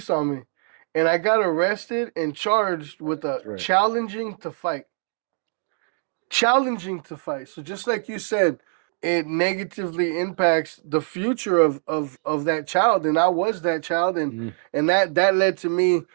on me, and I got arrested and charged with a Right. challenging to fight. So just like you said, it negatively impacts the future of that child, and I was that child, Mm, and that led to me,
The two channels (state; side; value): silent; left; 63 dB below the other